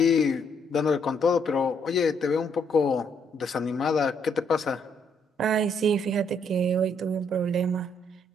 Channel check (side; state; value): both; normal; correlation 0.71